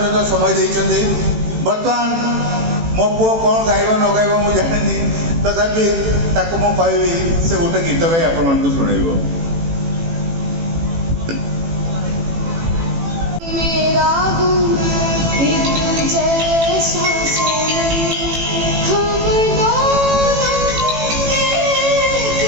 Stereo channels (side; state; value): left; late; 18 ms